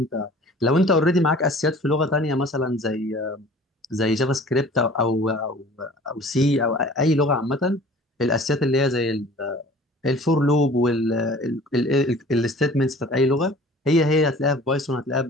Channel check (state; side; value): normal; both; correlation 0.47